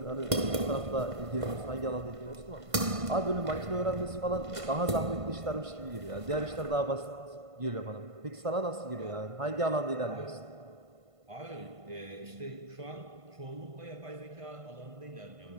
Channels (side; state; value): left; late; 1.5 ms